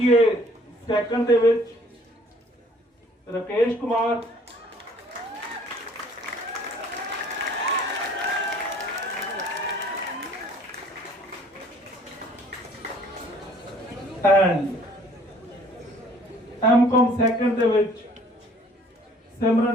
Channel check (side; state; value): both; normal; correlation 0.56